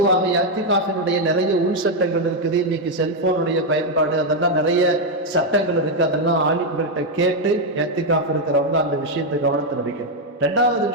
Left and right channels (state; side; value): normal; both; correlation 0.02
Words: இஅ்திகாஃபினுடைய நிறைய உள் சட்டங்கள் இருக்குது. இன்னைக்கு செல்போனுடைய பயன்பாடு, அதெல்லாம் நிறைய சட்டங்கள் இருக்கு. அதெல்லாம் ஆலிம்கள்கிட்ட கேட்டு இஅ்திகாஃப் இருக்கிறவங்க அந்த விஷயத்தை கவனத்தில் வைக்கணும். 2வது